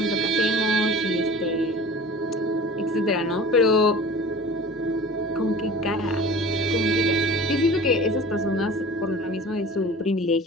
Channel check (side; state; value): both; normal; correlation 0.41